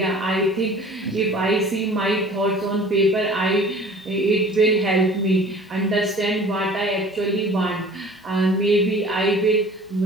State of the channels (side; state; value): both; normal; correlation 0.46